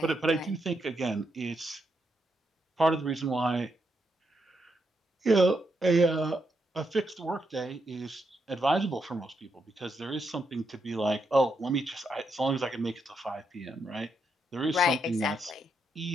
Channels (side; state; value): both; normal; correlation 0.81